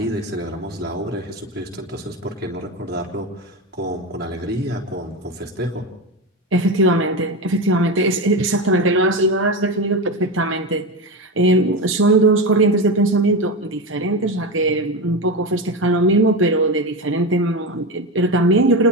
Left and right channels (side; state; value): both; normal; correlation 0.18